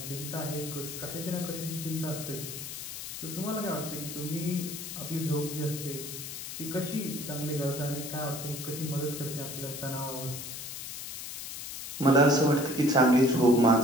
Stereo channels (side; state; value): left; noise; hiss, 8 dB below the sound